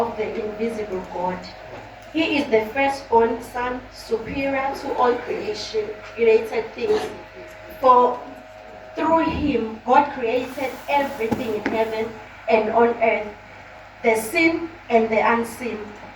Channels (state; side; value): identical; both; correlation 1.00